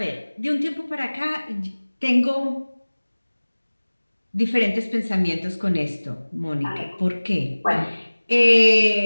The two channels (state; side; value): inverted; both; correlation -1.00